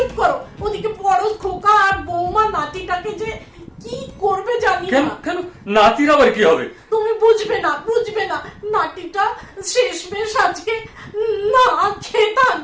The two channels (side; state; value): both; identical; correlation 1.00